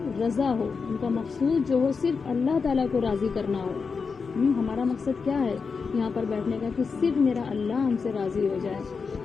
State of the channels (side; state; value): right; quieter; 5.2 dB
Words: رضا ہو، ان کا مقصود جو ہو صرف اللہ تعالیٰ کو راضی کرنا ہو۔ ہمارا مقصد کیا ہے یہاں پر بیٹھنے کا؟ کہ صرف میرا اللہ ہم سے راضی ہو جائے،